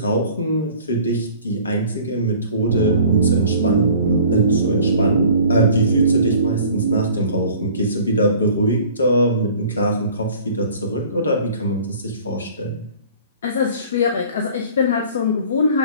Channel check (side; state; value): both; inverted; correlation -0.48